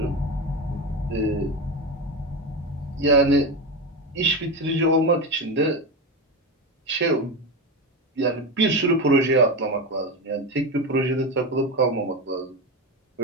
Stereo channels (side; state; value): both; normal; correlation 0.18